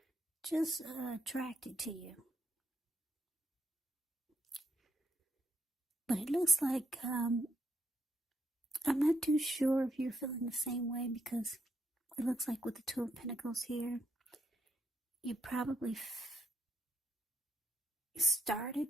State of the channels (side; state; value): both; normal; correlation 0.76